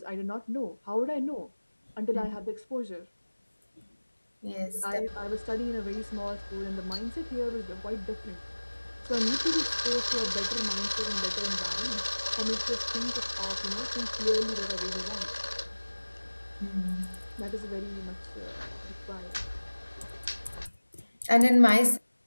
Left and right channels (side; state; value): both; inverted; correlation -1.00